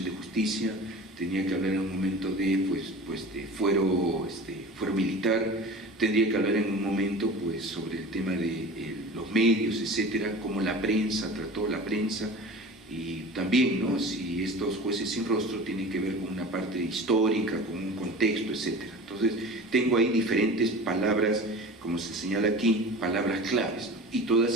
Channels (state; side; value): normal; both; correlation 0.36